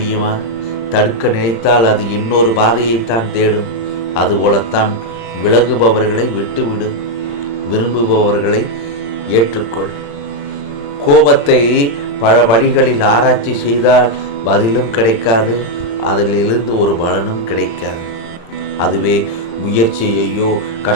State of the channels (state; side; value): late; right; 35 ms